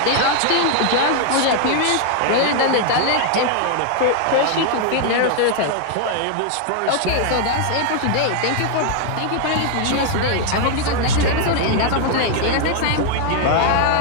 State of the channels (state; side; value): different; both; correlation 0.00